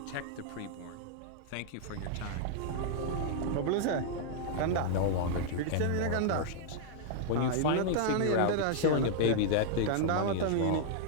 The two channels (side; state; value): both; different; correlation -0.01